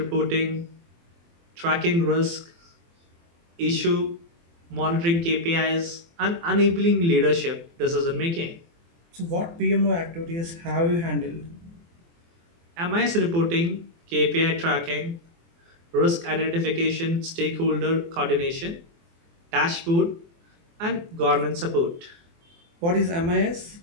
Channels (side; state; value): left; late; 24 ms